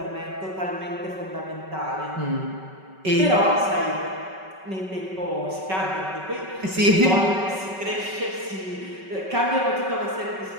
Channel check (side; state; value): left; late; 5.3 ms